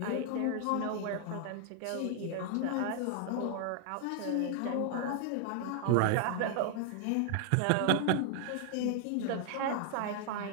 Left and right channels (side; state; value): both; different; correlation 0.00